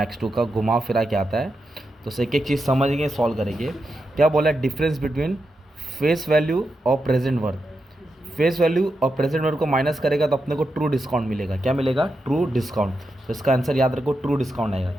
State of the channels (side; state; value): both; normal; correlation 0.87